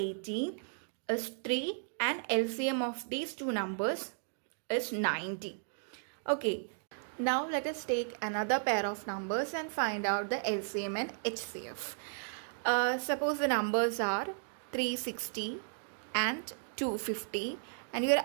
is 3 and LCM of these two numbers is 90. Okay, now let us take another pair of numbers and find out the LCM and HCF. Suppose the numbers are 360 and 250 and you are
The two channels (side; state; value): left; silent; digital silence